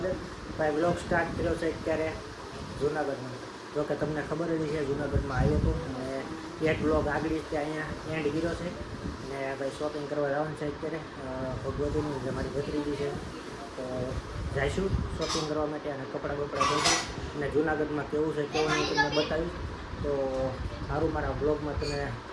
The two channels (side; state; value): both; identical; correlation 1.00